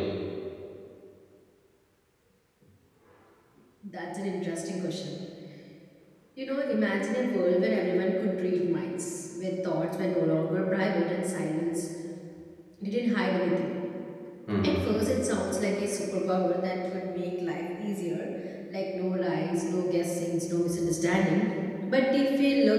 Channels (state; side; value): identical; both; correlation 1.00